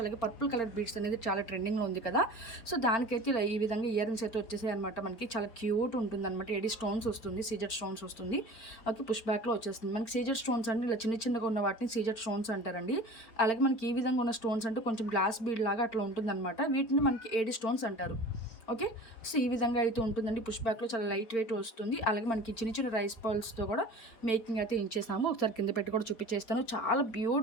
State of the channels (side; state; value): right; late; 4.4 ms